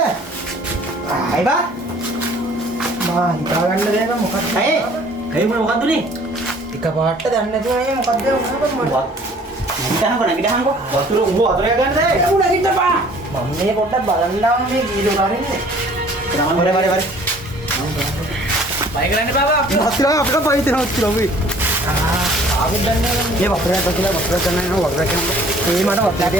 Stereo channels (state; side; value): normal; both; correlation 0.54